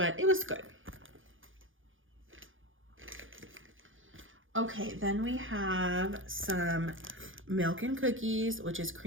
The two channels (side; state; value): left; late; 0.58 ms